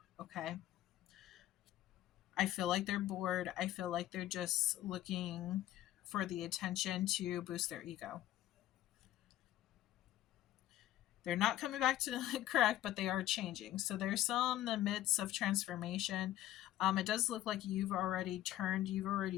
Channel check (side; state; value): right; quieter; 13.8 dB